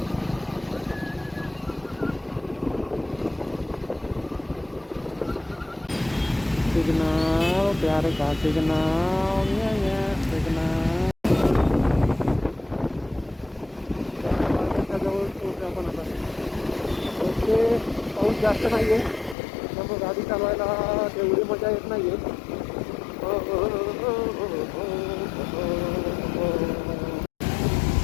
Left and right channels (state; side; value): drops out; right; at 19.4 s